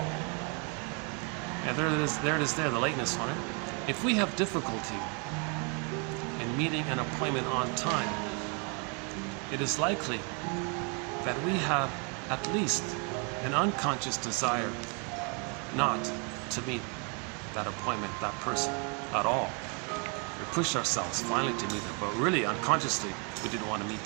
And there it is there, the lateness on it. If we have difficulty in meeting an appointment on time, it is likely that we have at least an unconscious desire not to meet that appointment, that person, at all. We pushed ourselves finally to meet them, but really unconsciously we didn't want to meet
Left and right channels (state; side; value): quieter; left; 35.3 dB